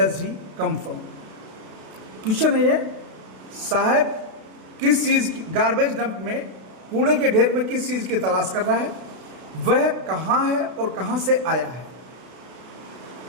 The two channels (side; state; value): left; late; 32 ms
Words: he come from. Question है ये, साहब किस चीज़ की, गार्बेज डंप में, कूड़े के ढेर में किस चीज़ की तलाश कर रहा है, वह कहाँ है और कहाँ से आया है।